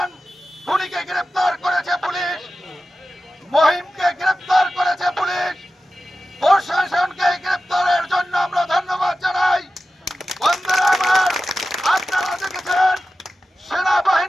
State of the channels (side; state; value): both; normal; correlation 0.94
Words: খুনিকে গ্রেপ্তার করেছে পুলিশ, মহিমকে গ্রেপ্তার করেছে পুলিশ, প্রশাসনকে গ্রেপ্তারের জন্য আমরা ধন্যবাদ জানাই। বন্ধুরা আমার, আপনারা দেখেছেন